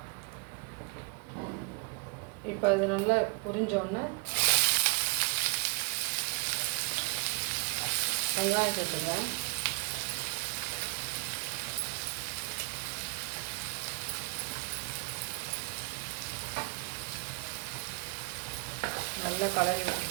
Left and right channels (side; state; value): left; quieter; 31.4 dB